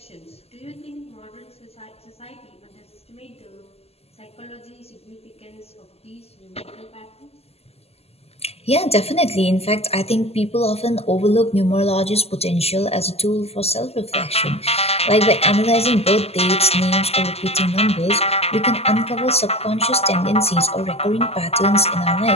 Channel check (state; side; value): late; right; 0.29 ms